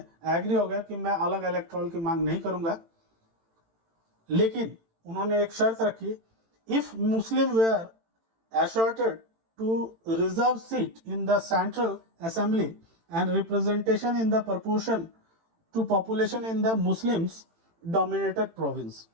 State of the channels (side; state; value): left; late; 18 ms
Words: एग्री हो गया कि मैं अलग इलेक्ट्रॉल की मांग नहीं करूंगा, लेकिन उन्होंने एक शर्त रखी, if Muslim were asserted to reserve seat in the central assembly and representation in the proportion to population in the Muslims dominated province।